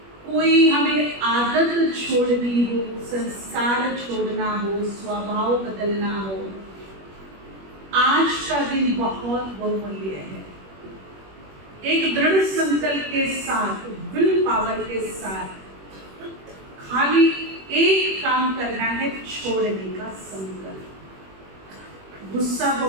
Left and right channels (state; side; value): late; left; 21 ms